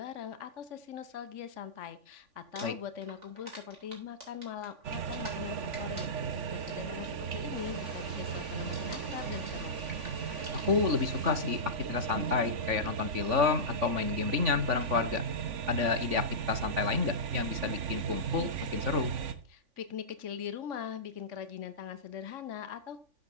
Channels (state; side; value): late; left; 3.5 ms